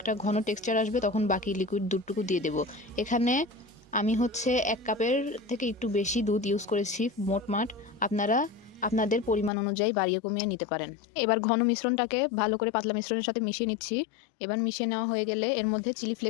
ঘন টেক্সচার আসবে তখন বাকি লিকুইড দুধটুকু দিয়ে দেব। এখানে আমি হচ্ছে 1 কাপের থেকে একটু বেশি দুধ ইউজ করেছি মোটমাট। আপনারা আপনাদের পরিমাণ অনুযায়ী বাড়িয়ে কমিয়ে নিতে পারেন। এবার ঘন মিশ্রণটাকে ভালো করে পাতলা মিশ্রণের সাথে মিশিয়ে নিচ্ছি। এবার মিশিয়ে নেওয়া হয়ে গেলে এর মধ্যে চিলি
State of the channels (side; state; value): right; drops out; at 9.5 s